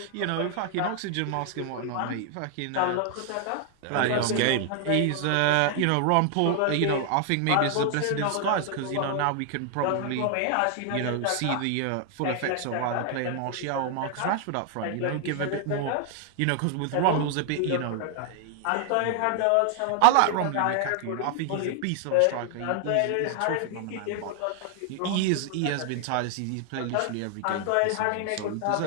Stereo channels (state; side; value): different; both; correlation 0.00